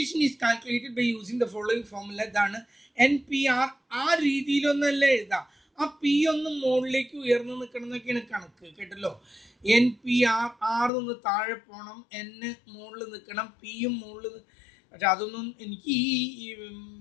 is calculated by using the following formula. ഇതാണ് NPR. ആ രീതിയിലൊന്നല്ല എഴുതാം. ആ പി ഒന്ന് മുകളിലേക്ക് ഉയർന്നു നിൽക്കണം എന്നൊക്കെയാണ് കണക്ക്, കേട്ടല്ലോ. NPR, ആർ നിന്ന് താഴെ പോകണം, N മുകളിൽ നിൽക്കണം, പിയും മുകളിൽ. പക്ഷെ അതൊന്നും എനിക്ക് ഈ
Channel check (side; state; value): right; drops out; at 10.9 s